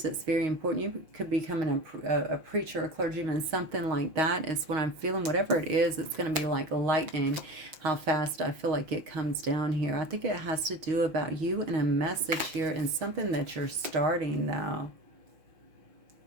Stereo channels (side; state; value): left; late; 6.4 ms